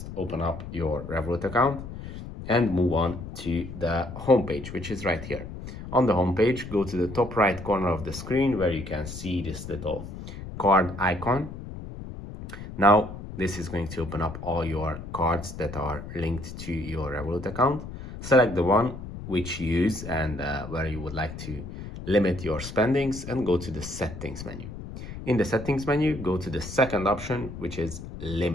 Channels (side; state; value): left; noise; rumble, 10 dB below the sound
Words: open up your Revolut account and move on to the homepage, which is right here. On the homepage, go to the top right corner of the screen where you can see this little card icon. Now this is going to open up all your cards that are linked to your Revolut account. Select the one which you use and where you would like to limit your spendings, and go to the settings menu. In the settings menu, go to the second option, which is